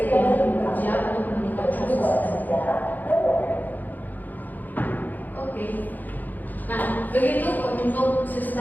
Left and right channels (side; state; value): right; late; 0.084 ms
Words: yang bekerja untuk menentukan posisi. Oke. Nah, begitu untuk